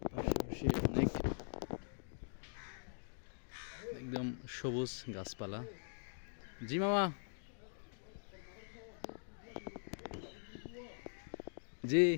পাশাপাশি অনেক একদম সবুজ গাছপালা। জি মামা, জি।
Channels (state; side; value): silent; right; digital silence